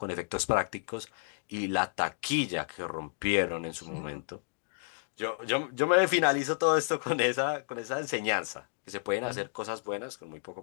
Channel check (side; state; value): right; silent; digital silence